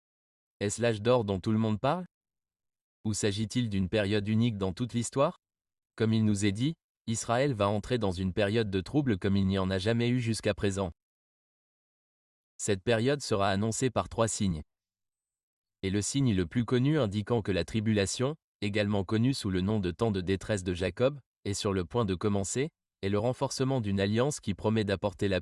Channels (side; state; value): both; identical; correlation 1.00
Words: Est-ce l'âge d'or dont tout le monde parle? Ou s'agit-il d'une période unique dans toute l'histoire? Comme il nous est dit, Israël va entrer dans une période de trouble comme il n'y en a jamais eu jusqu'à présent. Cette période sera annoncée par 3 signes. Et le signe le plus connu indiquant que la tribulation, également connue sous le nom de temps de détresse de Jacob, est sur le point de commencer, est le renforcement d'une alliance qui promet d'apporter la